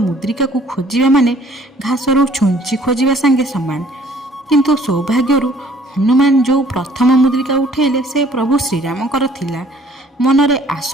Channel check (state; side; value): normal; both; correlation 0.58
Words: ମୁଦ୍ରିକାକୁ ଖୋଜିବା ମାନେ ଘାସରୁ ଛୁଞ୍ଚି ଖୋଜିବା ସାଙ୍ଗେ ସମାନ। କିନ୍ତୁ ସୌଭାଗ୍ୟରୁ ହନୁମାନ ଯେଉଁ ପ୍ରଥମ ମୁଦ୍ରିକା ଉଠାଇଲେ ସେ ପ୍ରଭୁ ଶ୍ରୀରାମଙ୍କର ଥିଲା। ମନରେ